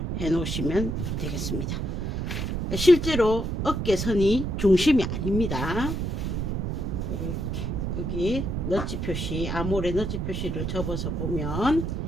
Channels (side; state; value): right; noise; rumble, 2 dB below the sound